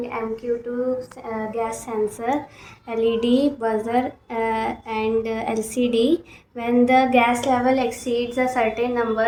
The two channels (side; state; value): both; identical; correlation 1.00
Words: MQ2 gas sensor, LED, buzzer and LCD. When the gas level exceeds a certain